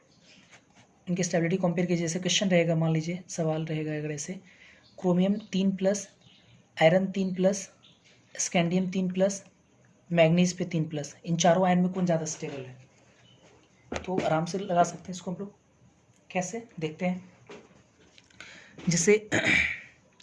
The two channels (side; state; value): both; identical; correlation 1.00